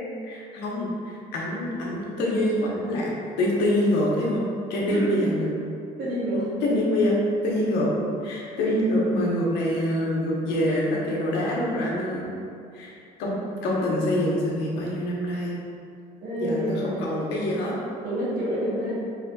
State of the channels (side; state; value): both; normal; correlation 0.54